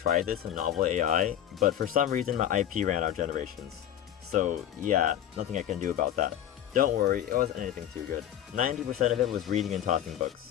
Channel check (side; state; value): right; quieter; 10.8 dB